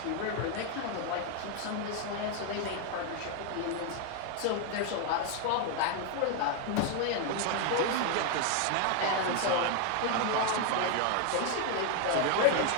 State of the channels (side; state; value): both; different; correlation 0.01